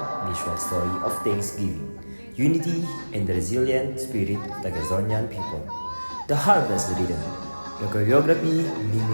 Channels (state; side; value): inverted; both; correlation -1.00